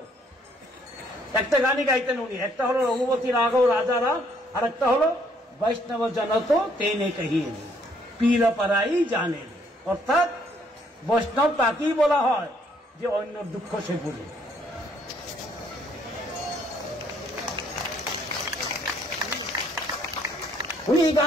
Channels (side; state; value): both; normal; correlation 0.67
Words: একটা গানই গাইতেন উনি। একটা হলো রঘুপতি রাঘব রাজা রাম, আর একটা হলো বৈষ্ণব জনত তেনে কহিয়ে পীর পরাই জানে। অর্থাৎ বৈষ্ণব তাকেই বলা হয় যে অন্য দুঃখ সে বুঝে। উনি এই